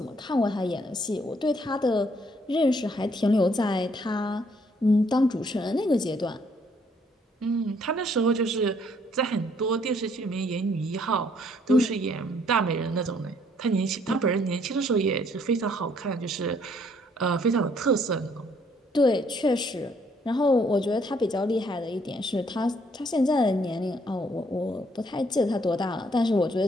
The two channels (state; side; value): normal; both; correlation 0.66